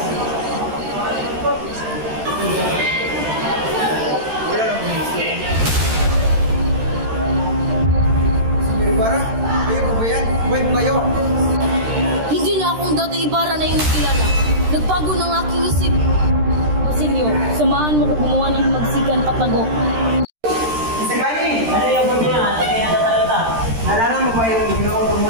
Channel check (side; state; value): left; late; 13 ms